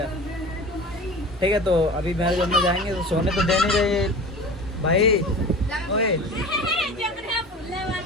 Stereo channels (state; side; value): normal; both; correlation 0.36